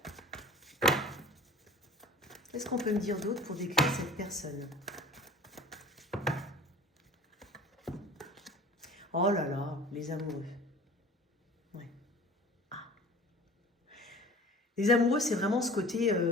Qu'est-ce qu'on peut me dire d'autre pour décrire cette personne? Oh là là, les amoureux. Ouais. Ah. Les amoureux, c'est vraiment ce côté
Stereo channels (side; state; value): both; normal; correlation 0.43